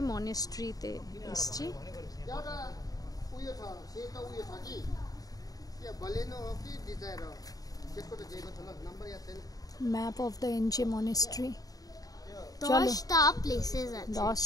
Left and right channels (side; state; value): right; late; 0.18 ms